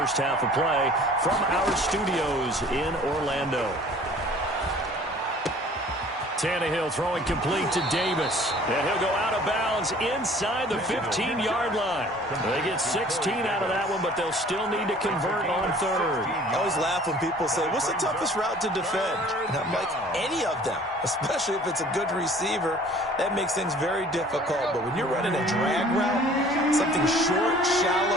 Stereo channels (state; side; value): normal; both; correlation 0.51